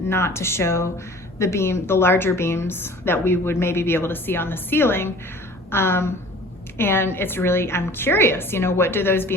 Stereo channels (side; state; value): both; normal; correlation 0.46